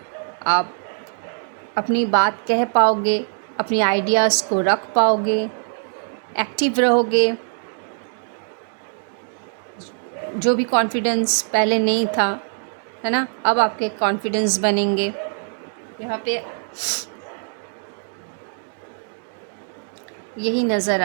आप अपनी बात कह पाओगे, अपनी आइडियाज़ को रख पाओगे, एक्टिव रहोगे। जो भी कॉन्फिडेंस पहले नहीं था, है ना, अब आपके कॉन्फिडेंस बनेंगे। यहाँ पे यही नज़र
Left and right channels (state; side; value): silent; left; 60 dB below the other